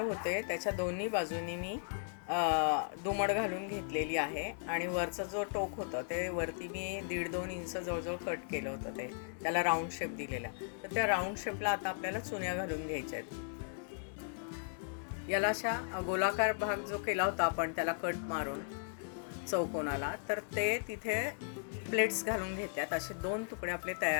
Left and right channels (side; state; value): right; silent; 53 dB below the other